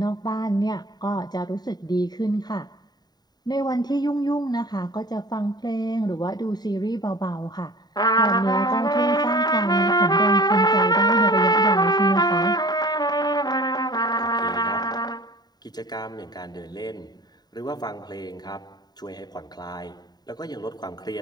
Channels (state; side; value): late; right; 0.20 ms